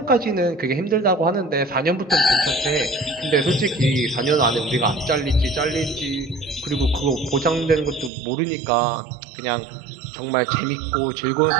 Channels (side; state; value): left; drops out; at 8.1 s